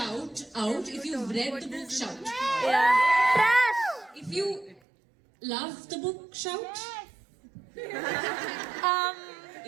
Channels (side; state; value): left; drops out; at 4.8 s